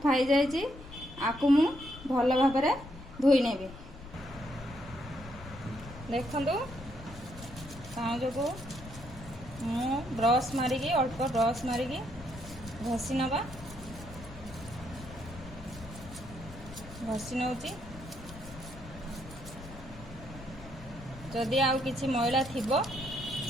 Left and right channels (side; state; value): left; noise; rumble, 15 dB below the sound